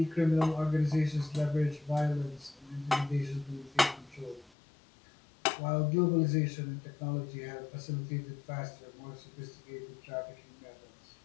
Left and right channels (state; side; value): drops out; right; at 4.5 s